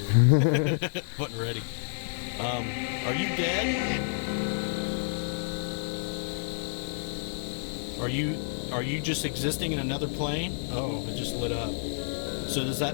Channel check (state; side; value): silent; right; digital silence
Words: Wasn't ready. Are you dead? Are you just existing in another plane? Oh, it just lit up. So does